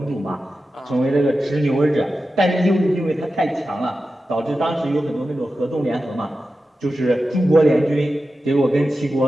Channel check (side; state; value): both; normal; correlation 0.92